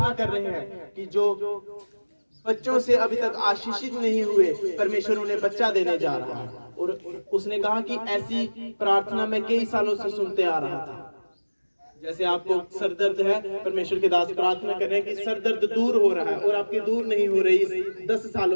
कर रहे हैं कि जो बच्चों से अभी तक आशीषित नहीं हुए परमेश्वर उन्हें बच्चा देने जा रहा है। और उसने कहा कि ऐसी प्रार्थना मैं कई सालों से सुनते आ रहा था। जैसे आपको सर दर्द है, परमेश्वर के दास प्रार्थना कर रहे हैं कि सर दर्द दूर हो रहा है और आपकी दूर नहीं हो रही 10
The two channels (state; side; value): inverted; both; correlation -1.00